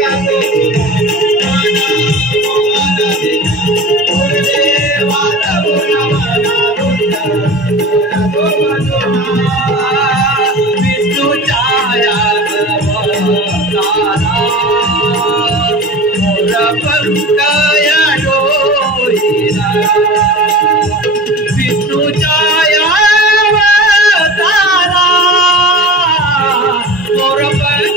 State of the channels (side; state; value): both; normal; correlation 0.35